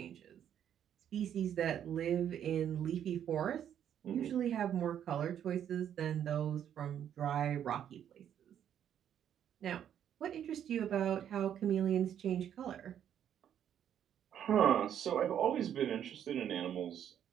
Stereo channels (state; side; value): quieter; left; 9.6 dB